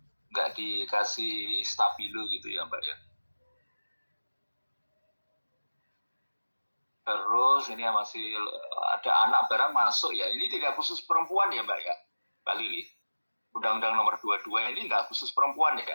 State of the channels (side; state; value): both; inverted; correlation -1.00